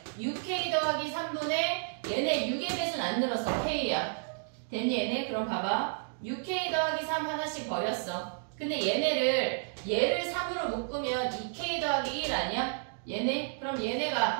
6K 더하기 3분의 얘네 6의 배수는 안 늘었어. K야. 됐니 얘네? 그럼 봐봐. 6K 더하기 3 하나씩 버렸어. 근데 얘를 3으로 묶으면 2K 더하기 1 아니야? 얘네? 그럼 얘네가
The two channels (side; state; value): left; silent; digital silence